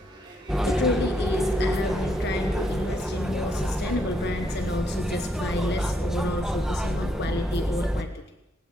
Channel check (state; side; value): normal; both; correlation 0.75